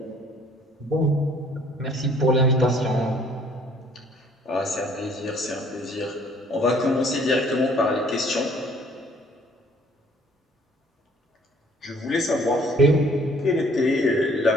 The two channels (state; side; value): normal; both; correlation 0.58